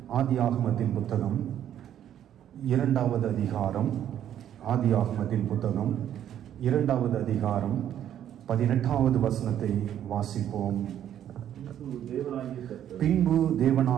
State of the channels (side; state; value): left; quieter; 10.6 dB